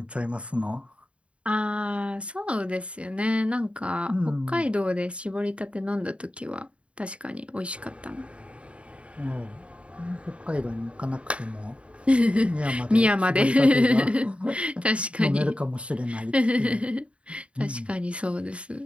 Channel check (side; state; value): left; late; 0.061 ms